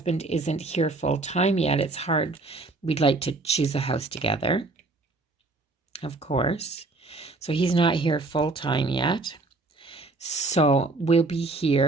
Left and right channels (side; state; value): left; quieter; 3.3 dB